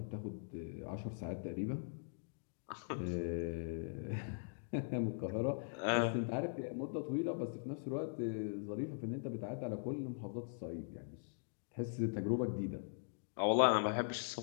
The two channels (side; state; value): right; silent; digital silence